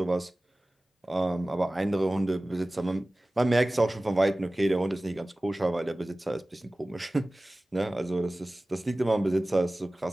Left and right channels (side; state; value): both; normal; correlation 0.98